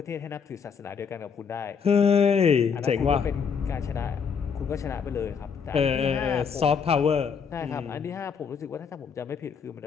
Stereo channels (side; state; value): right; quieter; 6.3 dB